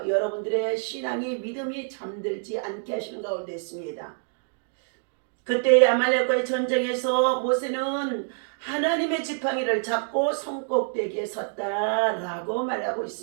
여러분들의 신앙이 믿음이 잠들지 않게 하시는 가운데 있습니다. 그때 아말렉과의 전쟁에서 모세는 하나님의 지팡이를 잡고 손꼭대기에 섰다라고 말하고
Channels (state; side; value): silent; left; digital silence